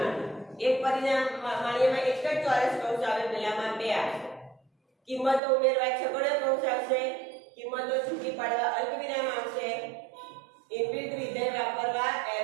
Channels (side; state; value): left; drops out; at 5.4 s